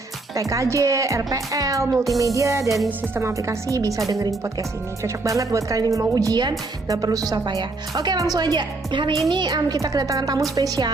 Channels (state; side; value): quieter; left; 3.3 dB